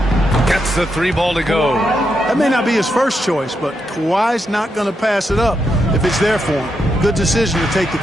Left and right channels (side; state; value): both; normal; correlation 0.82